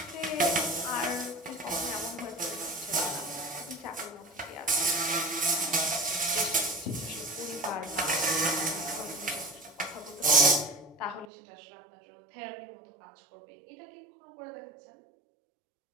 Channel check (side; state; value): left; drops out; at 11.2 s